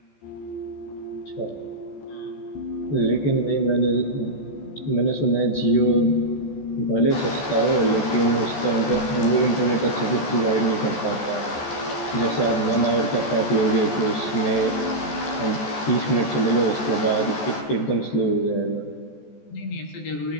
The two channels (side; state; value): right; late; 14 ms